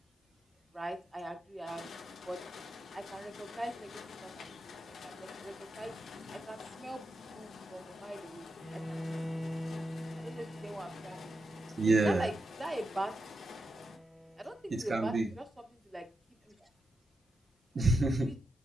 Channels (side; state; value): both; normal; correlation 0.87